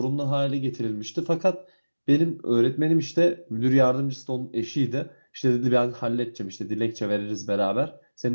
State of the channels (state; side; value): inverted; both; correlation -1.00